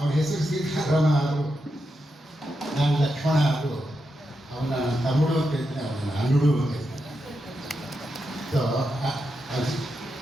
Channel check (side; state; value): both; normal; correlation 0.86